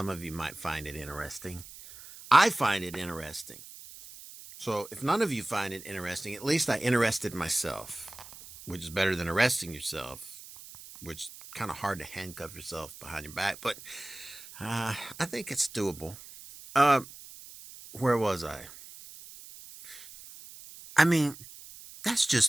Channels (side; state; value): right; noise; hiss, 16 dB below the sound